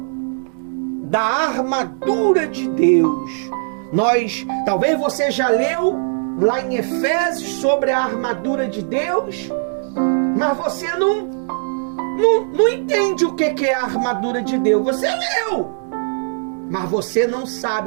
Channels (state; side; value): silent; left; 66 dB below the other